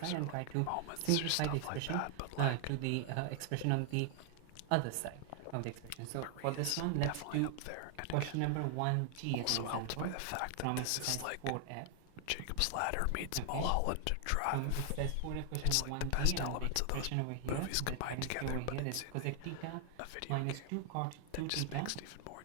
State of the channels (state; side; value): different; both; correlation 0.00